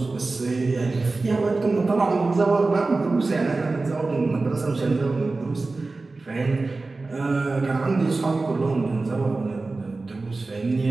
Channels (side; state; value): left; quieter; 3.5 dB